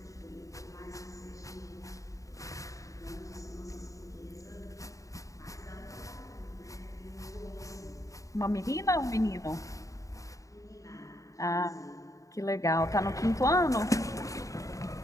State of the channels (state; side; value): late; right; 0.16 ms